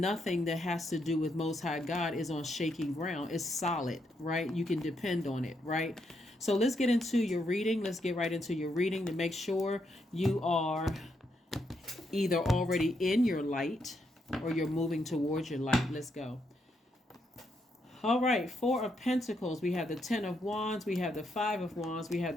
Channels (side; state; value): both; normal; correlation 0.78